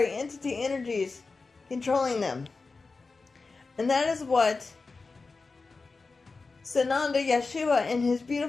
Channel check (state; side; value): quieter; right; 4.0 dB